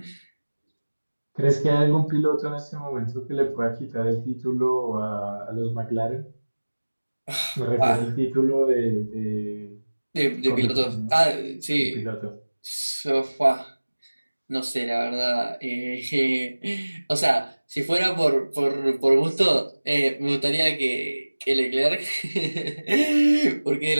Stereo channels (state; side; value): inverted; both; correlation -1.00